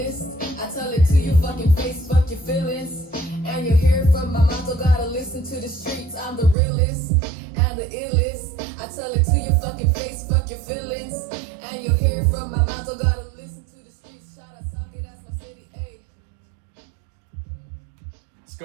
I tell it to your fucking face, fuck your feelings. And you hear it from my mouth, don't gotta listen to the streets. I'm the realest and the illest. I tell it to your fucking face, fuck your feelings. And you hear it from my mouth, don't gotta listen to the streets. Shout out Socket, that's my city, ayy. It's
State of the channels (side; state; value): left; drops out; at 6.6 s